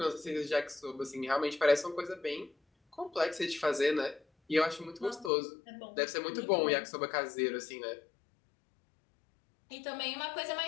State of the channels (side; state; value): right; drops out; at 5.3 s